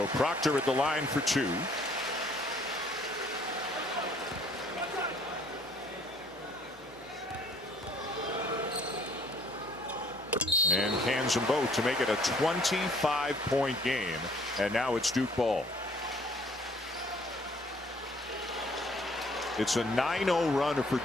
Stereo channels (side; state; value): both; normal; correlation 0.59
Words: Proctor at the line for 2. And cans them both to make it a 25-point game. And now it's Duke ball. It's a 9-0 run for